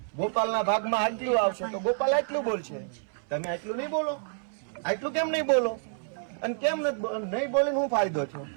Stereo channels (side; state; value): left; silent; 59 dB below the other